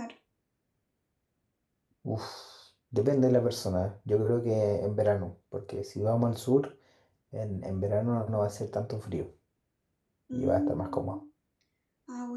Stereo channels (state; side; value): identical; both; correlation 1.00